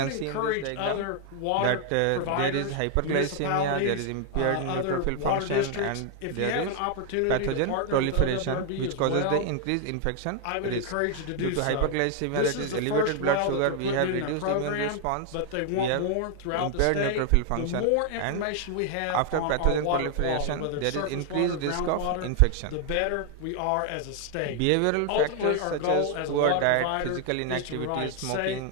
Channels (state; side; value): different; both; correlation 0.00